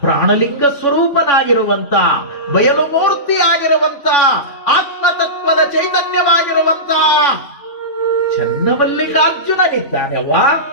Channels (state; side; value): late; right; 3.6 ms